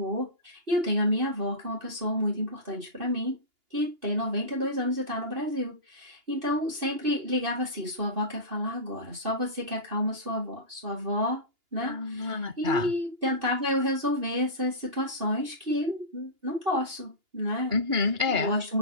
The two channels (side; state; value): left; late; 2.8 ms